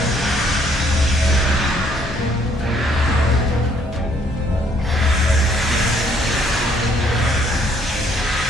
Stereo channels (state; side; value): normal; both; correlation 0.66